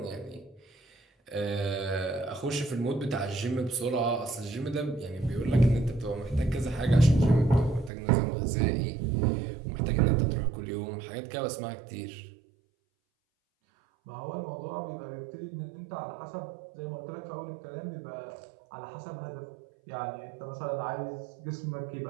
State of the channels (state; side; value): drops out; left; at 7.9 s